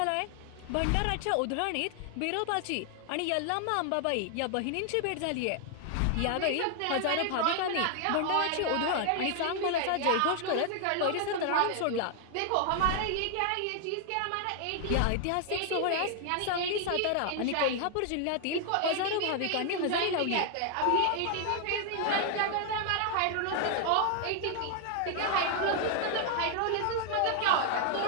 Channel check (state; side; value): different; both; correlation 0.00